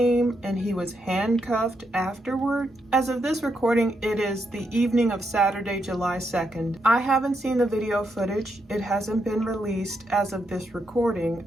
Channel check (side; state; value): both; normal; correlation 0.81